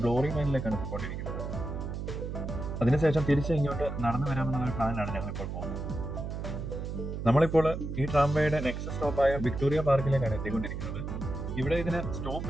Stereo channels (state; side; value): noise; right; hum, 5 dB below the sound